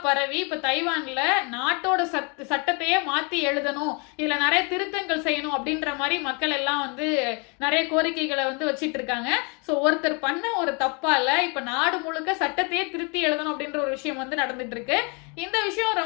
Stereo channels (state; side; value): quieter; right; 33.4 dB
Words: பரவி இப்ப தைவான்ல நாட்டோட சட்டத்தையே மாத்தி எழுதணும், இதுல நிறைய திருத்தங்கள் செய்யணும் அப்படின்ற மாதிரி மக்கள் எல்லாம் வந்து நிறைய கோரிக்கைகளை வந்து வச்சிட்டு இருக்காங்க. ஸோ ஒருத்தர் பண்ண ஒரு தப்பால இப்ப நாடு முழுக்க சட்டத்தையே திருத்தி எழுதணும் அப்படின்ற ஒரு விஷயம் வந்து நடந்துட்டு இருக்கு. இந்த விஷயம்